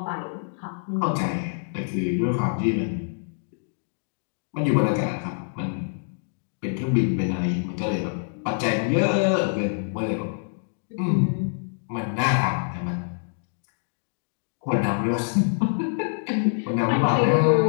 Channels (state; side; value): silent; right; digital silence